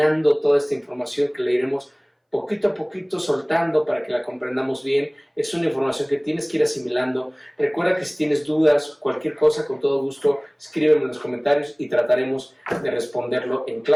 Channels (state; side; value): identical; both; correlation 1.00